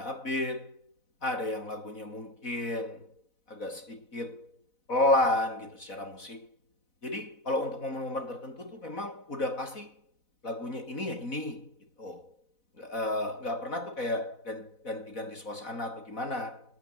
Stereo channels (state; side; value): late; right; 4.0 ms